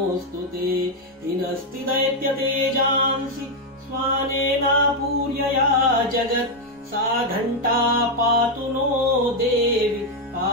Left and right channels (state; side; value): normal; both; correlation 0.02